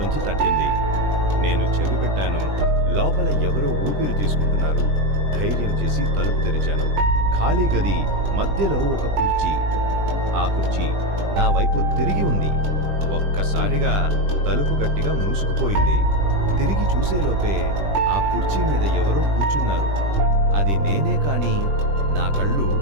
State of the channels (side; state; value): left; late; 20 ms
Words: తట్టింది. నేను చెవి పెట్టాను. లోపల ఎవరో ఊపిరి తీసుకుంటున్నారు. ధైర్యం చేసి తలుపు తెరిచాను. ఖాళీ గది మధ్యలో ఒక కుర్చీ. ఆ కుర్చీ నా వైపు తిరిగి ఉంది. ఒక్కసారిగా తలుపు గట్టిగా మూసుకుపోయింది. తిరిగి చూసేలోపే ఆ కుర్చీ మీద ఎవరో కూర్చున్నారు. అది నేనే కాని నా కళ్ళు